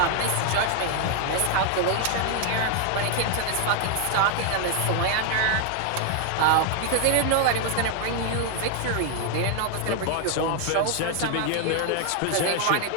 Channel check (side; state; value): both; different; correlation 0.00